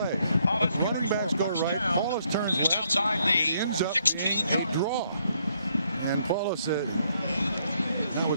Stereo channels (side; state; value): both; inverted; correlation -0.72